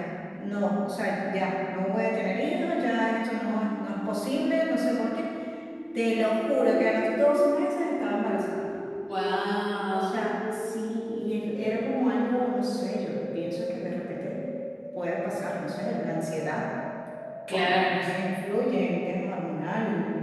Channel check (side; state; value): both; identical; correlation 1.00